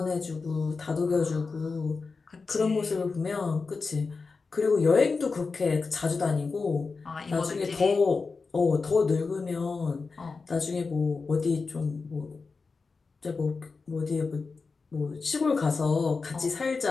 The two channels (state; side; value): quieter; right; 4.4 dB